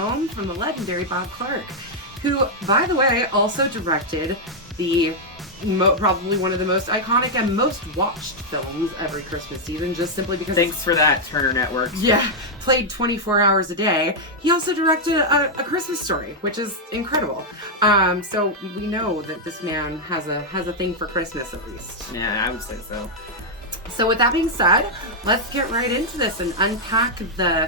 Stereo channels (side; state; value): both; normal; correlation -0.03